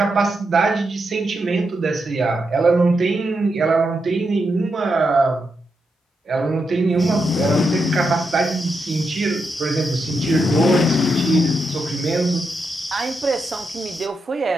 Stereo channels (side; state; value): both; normal; correlation 0.84